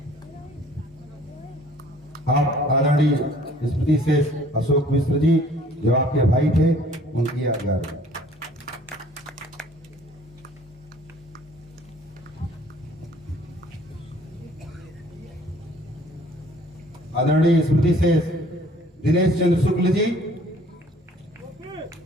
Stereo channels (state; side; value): normal; both; correlation 0.55